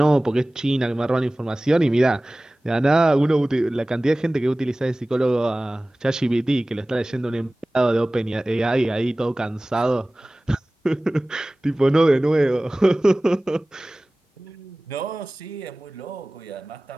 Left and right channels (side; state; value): both; normal; correlation 0.98